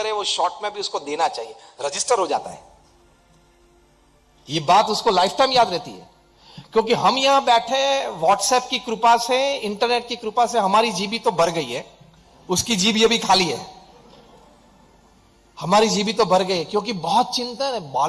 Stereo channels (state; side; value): identical; both; correlation 1.00